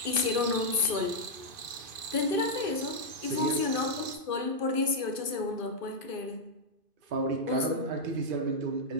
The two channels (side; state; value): left; late; 2.5 ms